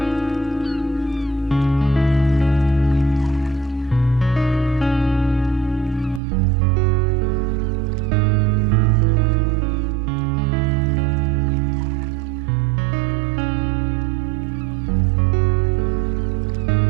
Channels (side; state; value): left; drops out; at 6.2 s